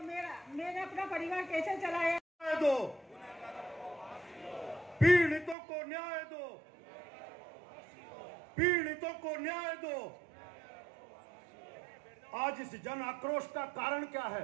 मैंने अपना परिवार कैसे चलाया। दो पीड़ितों को न्याय दो, पीड़ितों को न्याय दो। आज इस जन आक्रोश का कारण क्या है?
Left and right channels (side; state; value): left; drops out; at 5.6 s